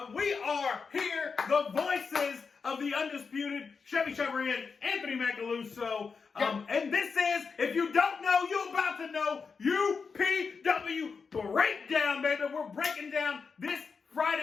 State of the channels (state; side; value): quieter; right; 5.2 dB